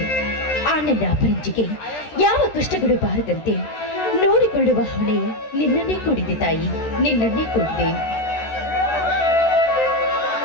ಆ ನನ್ನ ಅಪರಂಜಿಗೆ ಯಾವ ಕಷ್ಟಗಳು ಬಾರದಂತೆ ನೋಡಿಕೊಳ್ಳುವ ಹೊಣೆ ನಿನ್ನನ್ನೇ ಕೂಡಿದೆ ತಾಯಿ, ನಿನ್ನನ್ನೇ ಕೂಡಿದೆ.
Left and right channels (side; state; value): right; late; 13 ms